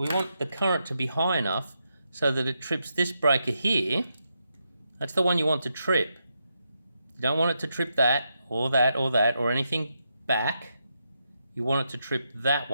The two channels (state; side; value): inverted; both; correlation -0.83